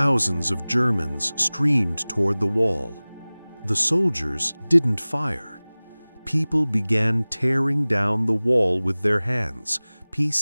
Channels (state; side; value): inverted; both; correlation -0.99